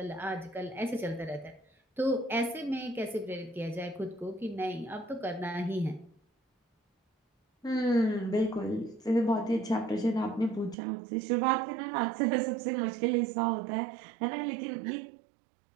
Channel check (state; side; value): drops out; left; at 10.8 s